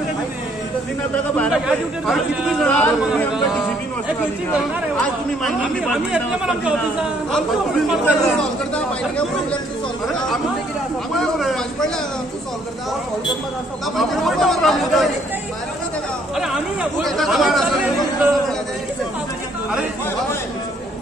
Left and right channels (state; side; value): normal; both; correlation 0.66